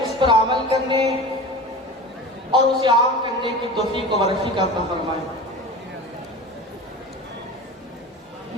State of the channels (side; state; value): both; normal; correlation 0.33